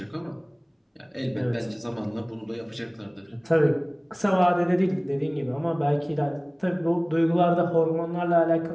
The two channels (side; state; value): both; identical; correlation 1.00